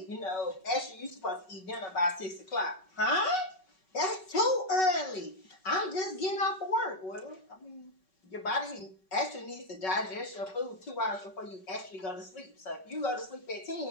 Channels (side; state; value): right; late; 5.3 ms